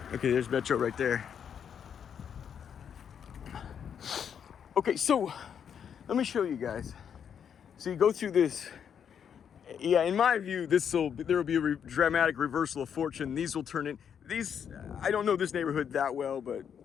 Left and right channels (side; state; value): right; quieter; 8.0 dB